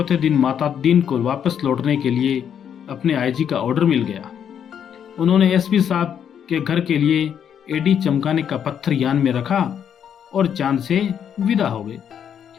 दिन माता दीन को वापस लौटने के लिए अपने IG का ऑर्डर मिल गया। उन्होंने SP साहब के घर के लिए एडी चमकाने का पत्थर यान में रखा और चांद से विदा हो गए।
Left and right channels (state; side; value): quieter; right; 8.6 dB